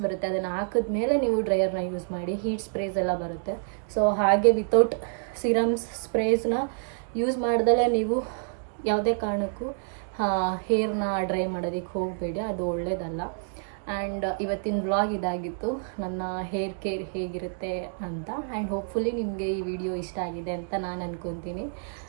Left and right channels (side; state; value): left; silent; digital silence